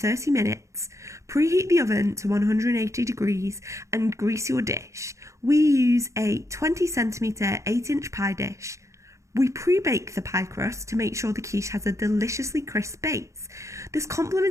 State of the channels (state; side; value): late; left; 0.15 ms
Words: minutes, preheat the oven to 180 degrees and grease your dish. We use a 20cm 8-inch pie dish. We pre-bake the pie crust to make sure the quiche has a deliciously crisp base. This